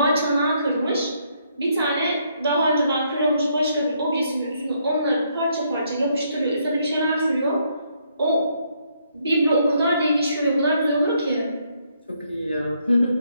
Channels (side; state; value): both; inverted; correlation -0.73